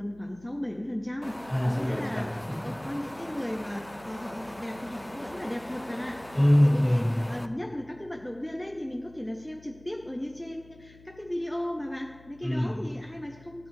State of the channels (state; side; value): noise; left; hum, 23 dB below the sound